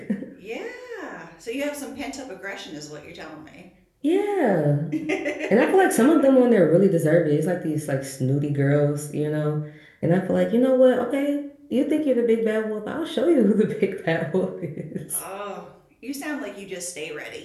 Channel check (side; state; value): both; identical; correlation 1.00